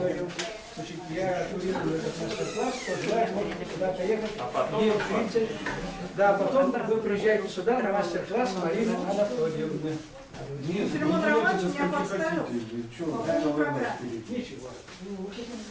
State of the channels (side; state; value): both; identical; correlation 1.00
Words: Значит, я курирую этот мастер-класс, кто желает, можете туда поехать. Да, потом вы приезжаете сюда на мастер-класс Марины Анатольевны. Филимон Романович меня подставил. По поводу программы. Ничего.